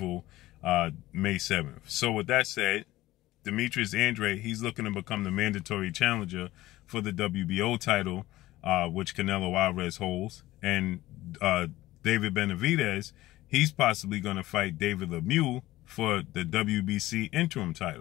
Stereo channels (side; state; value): right; quieter; 16.6 dB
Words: May 7th. So with that said, Demetrius Andrade, he's looking to become the mandatory challenger for the WBO title, which Canelo Alvarez holds. And David Benavidez, he's possibly going to fight David Lemieux for the WBC interim